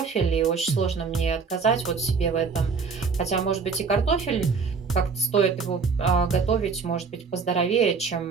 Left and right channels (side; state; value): left; quieter; 5.2 dB